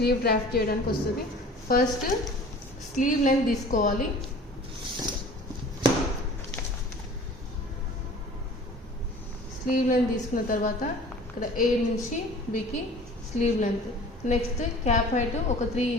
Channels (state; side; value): normal; both; correlation 0.45